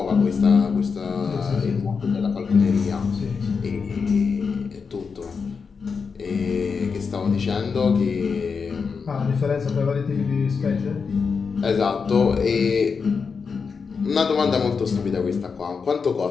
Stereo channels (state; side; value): quieter; right; 5.4 dB